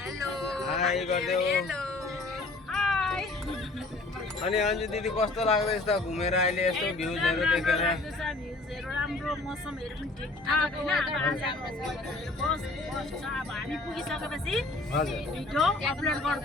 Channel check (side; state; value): right; quieter; 3.2 dB